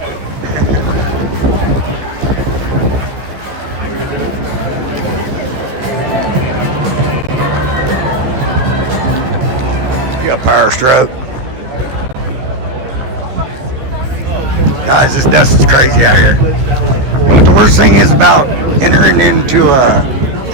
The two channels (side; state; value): left; late; 15 ms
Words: You got power stroke. Guys, this dust is crazy out here. What the worst thing is about entering into a